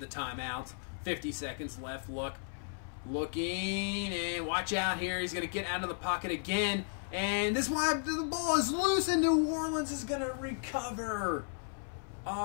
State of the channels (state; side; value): silent; right; 55 dB below the other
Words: timeout. 50 seconds left. Luck looking, and watch out here. He's going to get out of the pocket again, and this one, the ball is loose, and New Orleans is going to recover.